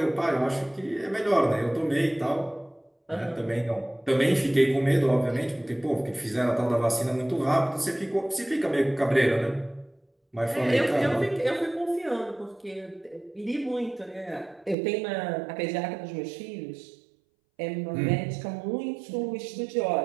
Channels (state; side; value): drops out; left; at 14.8 s